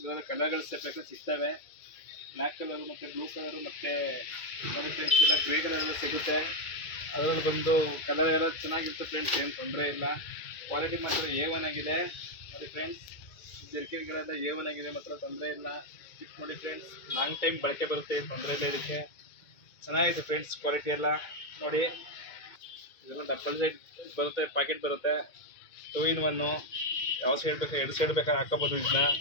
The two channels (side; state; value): right; late; 2.2 ms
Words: ಇವಾಗ ಕಲರ್ಗಳು ಬೇಕಾದ್ರೆ ಸಿಗ್ತವೆ, ಬ್ಲ್ಯಾಕ್ ಕಲರು ಮತ್ತು ಬ್ಲೂ ಕಲರು ಮತ್ತು ನೋಡಿ ಫ್ರೆಂಡ್ಸ್ ಇಲ್ಲ ಗ್ರೇ ಕಲರ್ ಎಲ್ಲ ಸಿಗುತ್ತೆ. ಅದರಲ್ಲಿ ಬಂದು ಕಲರ್ ಎಲ್ಲ ಚೆನ್ನಾಗಿರುತ್ತೆ ಫ್ರೆಂಡ್ಸ್, ಏನು ತೊಂದರೆ ಇಲ್ಲ. ಕ್ವಾಲಿಟಿ ಮಾತ್ರ A1 ಆಗಿದೆ ನೋಡಿ ಫ್ರೆಂಡ್ಸ್. ಜರ್ಕಿನ್ಗಳೆಲ್ಲ A1 ಆಗಿದೆ, ಮಾತ್ರ ತೊಂದರೆ ಇಲ್ಲ. ಇದು ನೋಡಿ ಫ್ರೆಂಡ್ಸ್, ಲಾಂಗ್ ಟೈಮ್ ಬಳಕೆ ಬರುತ್ತೆ, ಏನು ತೊಂದರೆ ಇಲ್ಲ. ಇದಕ್ಕೆ ಚೆನ್ನಾಗಿದೆ ಫ್ರೆಂಡ್ಸ್ ಕ್ವಾಲಿಟಿ ಎಲ್ಲ ನೋಡಿ. ಇದೆಲ್ಲ ಡಬಲ್ ಸೈಡ್ ಬರುತ್ತೆ, ಪ್ಯಾಕೆಟ್ ಬರುತ್ತೆ, 2-in-1. ಯಾವ ಸೈಡ್ ಬೇಕಾ, 2 ಸೈಡ್ ಬೇಕಾದ್ರೆ ಹಾಕೋಬೋದು ಇದನ್ನ